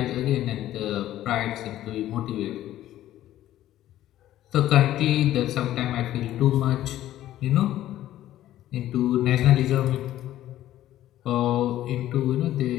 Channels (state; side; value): quieter; right; 13.4 dB